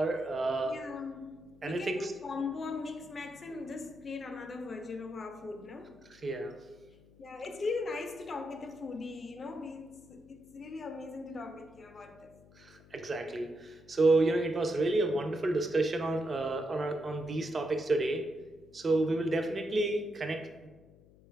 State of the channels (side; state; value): left; noise; hum, 25 dB below the sound